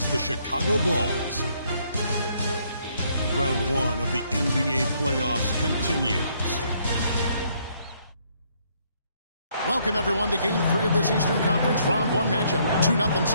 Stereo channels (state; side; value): inverted; both; correlation -0.69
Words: the Chicago Bulls. Round 1 of the NBA playoffs continues. Welcome, everyone, to Game 3 of this Eastern Conference Round 1 matchup. 2-0